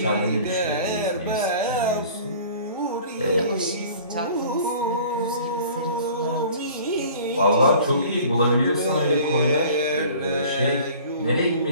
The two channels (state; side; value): inverted; both; correlation -0.47